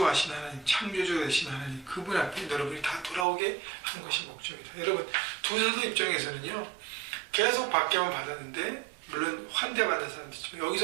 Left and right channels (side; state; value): left; drops out; at 3.2 s